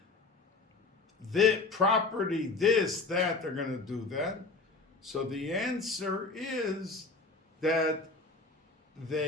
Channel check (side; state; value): right; quieter; 3.8 dB